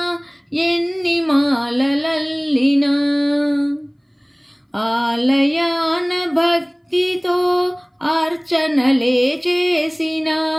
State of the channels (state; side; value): identical; both; correlation 1.00